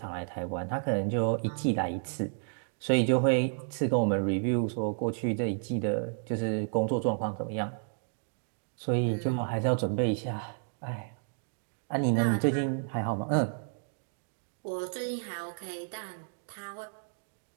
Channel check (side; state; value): left; silent; digital silence